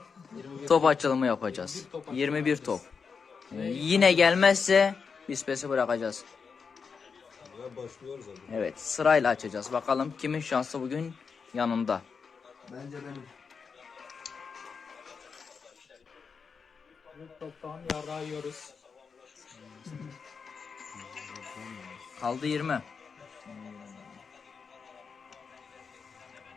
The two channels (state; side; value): quieter; right; 5.6 dB